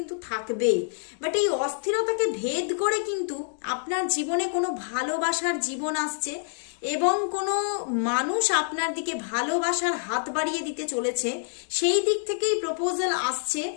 থাকবে। বাট এই অস্থিরতাকে ভেদ করে কিন্তু আপনার জীবনে কোনো ভালোবাসার জীবন আসছে এবং কোনো মানুষ আপনার দিকে ভালোবাসার হাত বাড়িয়ে দিতে চলেছে। সেই দিক থেকেই প্রপোজাল আসছে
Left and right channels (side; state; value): right; silent; digital silence